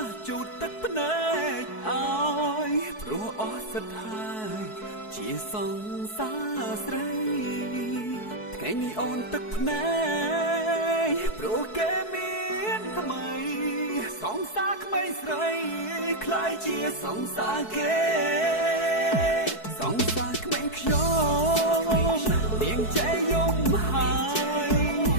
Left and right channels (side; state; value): right; late; 4.6 ms